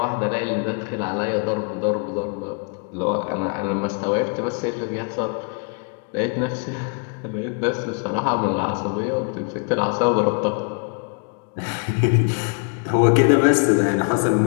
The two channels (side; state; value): right; quieter; 38.0 dB